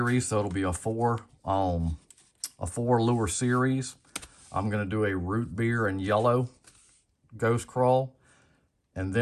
so it'll be a four lure series. I'm going to do a root beer and yellow ghost crawl, and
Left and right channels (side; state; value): both; identical; correlation 1.00